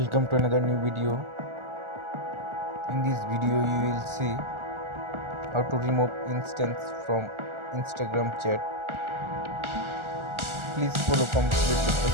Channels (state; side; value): late; left; 1.4 ms